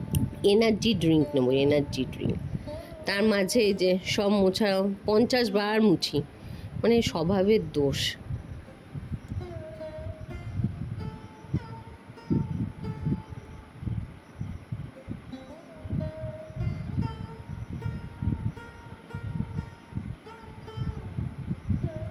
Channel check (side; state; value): both; identical; correlation 1.00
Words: এনার্জি ড্রিঙ্ক নেবো, এনার্জি ড্রিঙ্ক। তার মাঝে এই যে সব মোছা, 50 বার মুছি, মানে স্বভাবের দোষ।